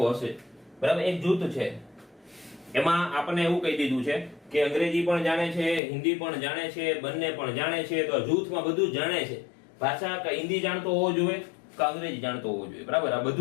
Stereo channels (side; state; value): right; drops out; at 5.8 s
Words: હશે? બરાબર. એક જૂથ છે એમાં આપણને એવું કહી દીધું છે કે અંગ્રેજી પણ જાણે છે, હિન્દી પણ જાણે છે, બંને પણ જાણે છે. તો જૂથમાં બધું જ જાણે છે. ભાષા કે હિન્દી જાણતો હોવો જોઈએ કે અંગ્રેજી જાણતો હોવો જોઈએ. બરાબર. આ